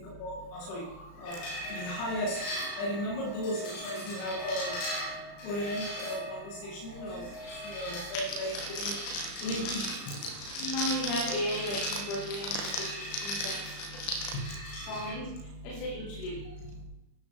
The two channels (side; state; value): right; late; 35 ms